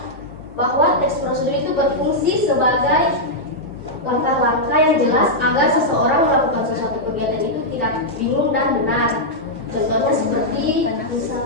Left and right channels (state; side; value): normal; both; correlation -0.06